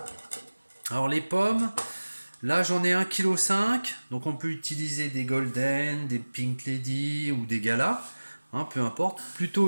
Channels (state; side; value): inverted; both; correlation -1.00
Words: Alors les pommes, là j'en ai 1,5 kg, donc on peut utiliser des Golden, des Pink Lady ou des Gala, peu importe,